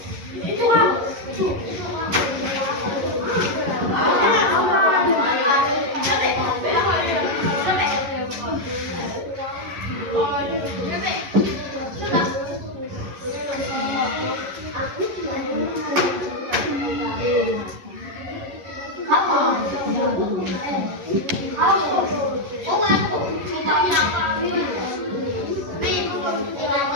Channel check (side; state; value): left; late; 11 ms